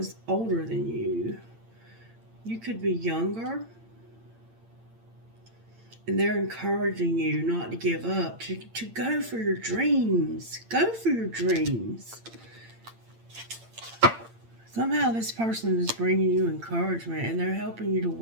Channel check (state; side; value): late; left; 8.8 ms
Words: older than you. You could be younger. And they're encouraging you not to give up, to go for your dreams. Go for your dreams. Somehow this person is bringing you encouragement, and they're helping you to